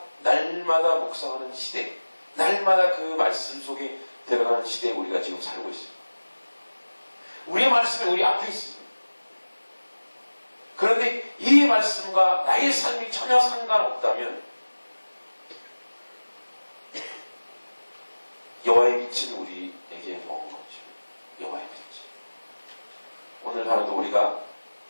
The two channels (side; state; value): both; inverted; correlation -1.00